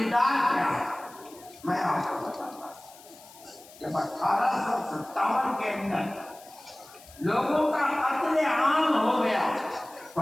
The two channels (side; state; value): left; noise; hiss, 22 dB below the sound